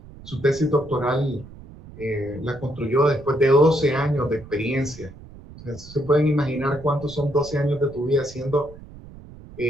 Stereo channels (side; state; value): right; noise; rumble, 18 dB below the sound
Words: Su tesis doctoral la construyó después de 12 años de experiencia. Entonces, se pueden imaginar cuántos son 12 años de tu vida haciendo